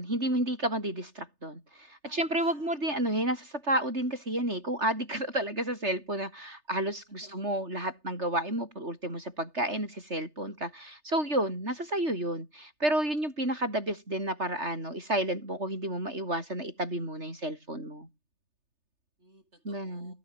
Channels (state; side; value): late; left; 3.3 ms